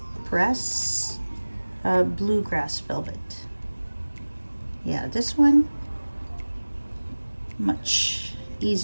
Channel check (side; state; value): both; inverted; correlation -1.00